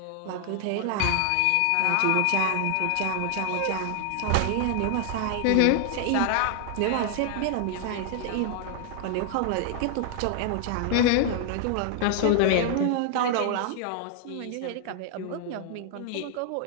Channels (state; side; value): different; both; correlation 0.00